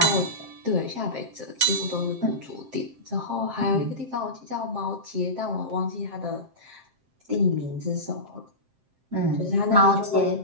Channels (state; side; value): late; left; 7.6 ms